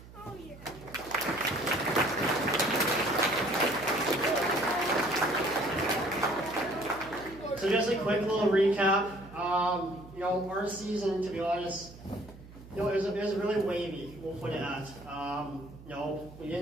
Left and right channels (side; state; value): right; noise; hum, 18 dB below the sound